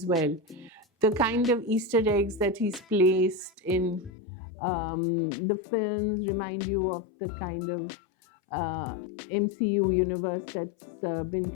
well. The kind of Easter eggs that he's placed in the films remind you of the kind of MCU universe that's been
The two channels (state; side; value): drops out; right; at 4.1 s